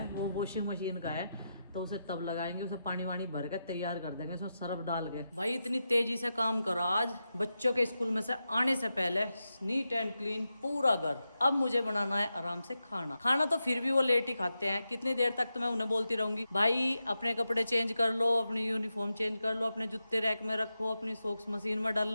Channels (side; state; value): both; inverted; correlation -0.89